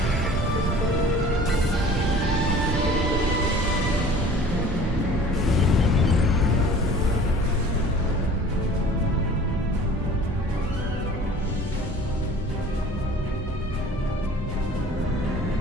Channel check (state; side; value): normal; both; correlation 0.47